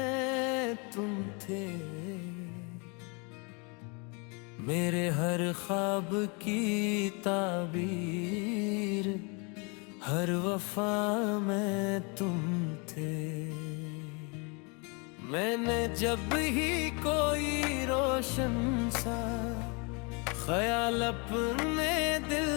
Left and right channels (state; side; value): quieter; right; 32.6 dB